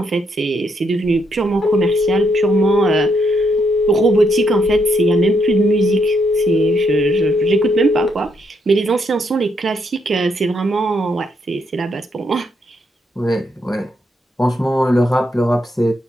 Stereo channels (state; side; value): normal; both; correlation 0.76